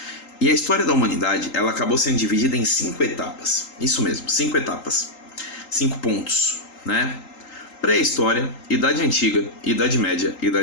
E a história da humanidade ela acabou sendo dividida em 5 etapas. Isso mesmo, 5 etapas, 5 pontos, né? Pré-história, Idade Antiga, Idade Média,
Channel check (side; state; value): right; late; 3.8 ms